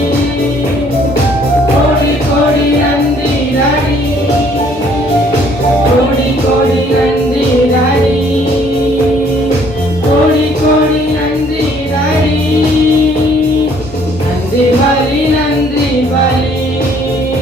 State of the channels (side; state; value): both; normal; correlation 0.62